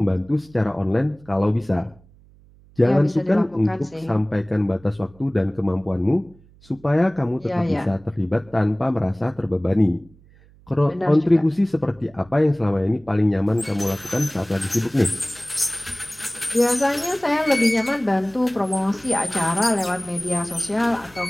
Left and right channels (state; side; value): noise; right; hum, 27 dB below the sound